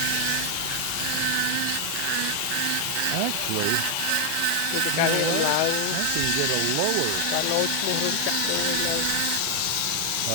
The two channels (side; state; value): both; different; correlation 0.00